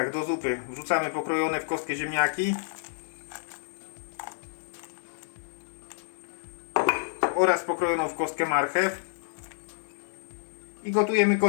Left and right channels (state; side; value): silent; right; 58 dB below the other